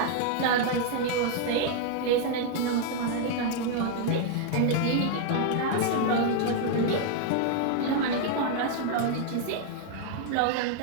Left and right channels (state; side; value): different; both; correlation 0.00